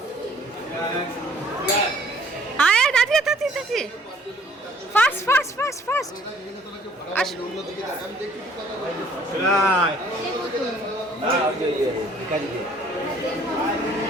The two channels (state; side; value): normal; both; correlation 0.58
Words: আয় দাদি দাদি দাদি, fast fast fast fast